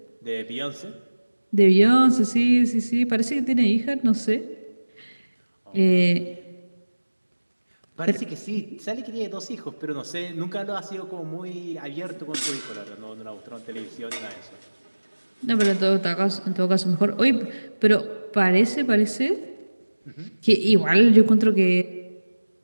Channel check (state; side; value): inverted; both; correlation -1.00